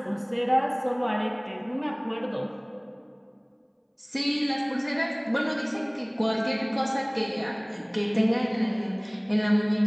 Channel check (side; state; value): both; identical; correlation 1.00